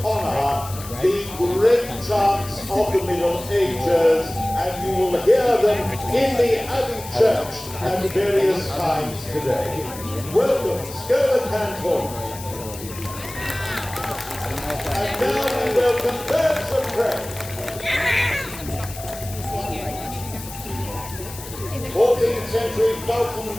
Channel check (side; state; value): left; noise; hiss, 14 dB below the sound